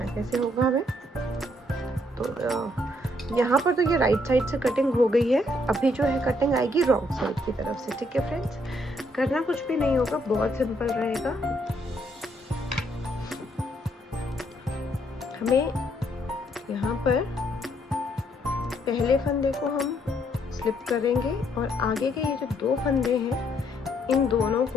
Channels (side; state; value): both; normal; correlation 0.71